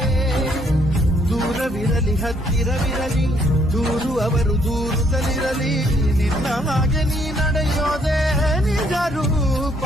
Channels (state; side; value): normal; both; correlation 0.68